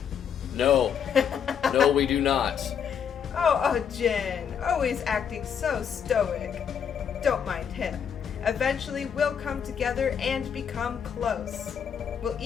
No. No, we do not. Oh, Ojin, always acting so stoic. Don't mind him. Eventually, we'll come together and become close. We'll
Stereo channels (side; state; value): right; quieter; 7.8 dB